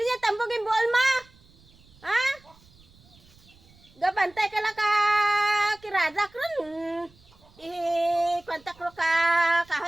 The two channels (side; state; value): right; noise; rumble, 28 dB below the sound